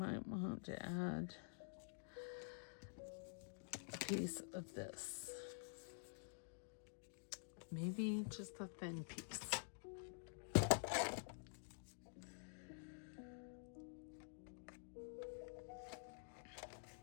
want to add a piece of this. Maybe just a thin piece.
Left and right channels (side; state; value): right; silent; digital silence